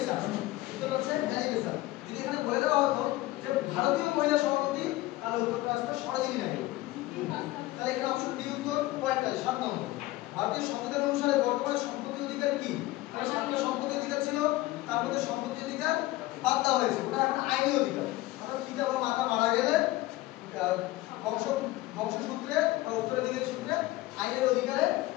উত্তর হচ্ছে অ্যানি বেসান্ট। যদি এখানে বলে দেওয়া হতো যে ভারতীয় মহিলা সভাপতি, তাহলে উত্তরটা আসতো সরোজিনী নাইডু। তাহলে এখানে অপশন ডি উত্তর। পয়েন্টটা 7 নম্বর, ভারতীয় সংবিধান অনুসারে বর্তমানে সম্পত্তি অধিকার কি? মানে 7টা সম্পত্তি অধিকার ছিল, তার মধ্যে সম্পত্তি অধিকার বাদ দেওয়া হয়েছে, ওটা এখন আইনি অধিকার। অর্থাৎ পিতা বা মাতা মারা গেলে বংশসূত্রে বা উত্তরাধিকারী সূত্রে আইনের অধিকারে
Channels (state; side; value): quieter; right; 18.1 dB